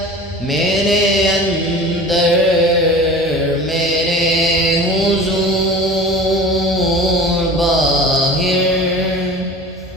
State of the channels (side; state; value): both; normal; correlation 0.39